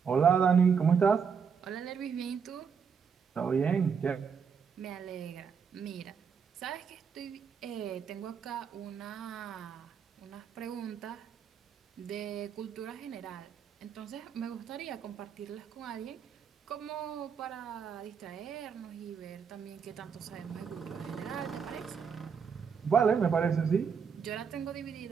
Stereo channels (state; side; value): quieter; left; 6.5 dB